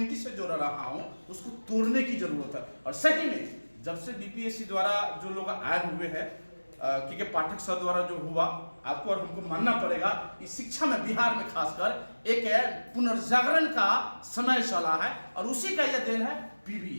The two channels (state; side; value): inverted; both; correlation -1.00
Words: से जोड़ रहा हूँ, उसको तोड़ने की जरूरत है। और सही में जब से DPSC द्वारा जो लोग आए हुए हैं, क्योंकि पाठक सर द्वारा जो हुआ, आपको और हमको मानना पड़ेगा इस शिक्षा में बिहार में खासकर एक पुनर्जागरण का समय चला है और उसी का यह देन है